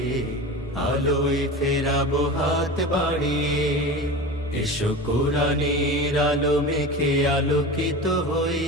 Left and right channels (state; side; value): normal; both; correlation 0.30